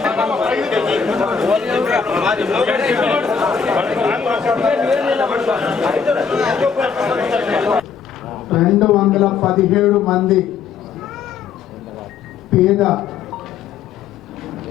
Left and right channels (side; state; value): right; quieter; 6.3 dB